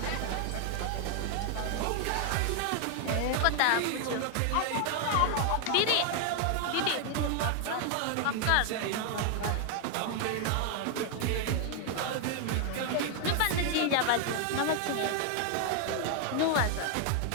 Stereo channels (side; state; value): both; different; correlation 0.00